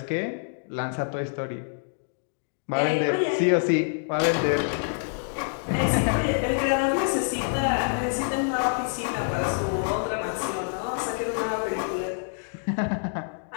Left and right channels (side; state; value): right; silent; digital silence